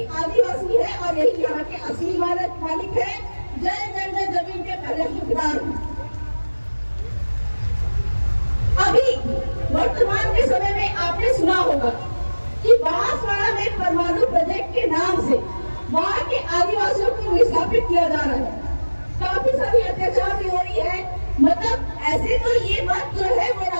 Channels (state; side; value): inverted; both; correlation -1.00